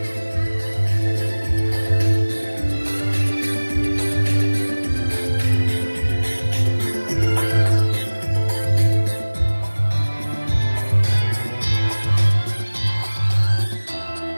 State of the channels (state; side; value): inverted; both; correlation -1.00